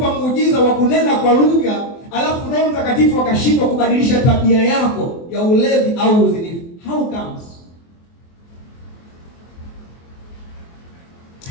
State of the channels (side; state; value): right; late; 24 ms